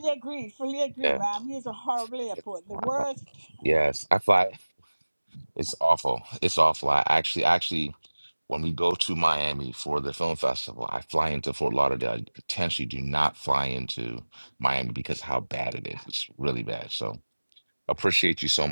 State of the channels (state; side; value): inverted; both; correlation -1.00